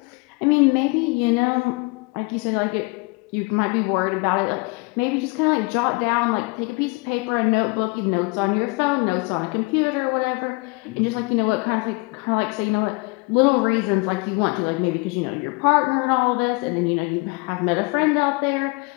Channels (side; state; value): right; quieter; 27.8 dB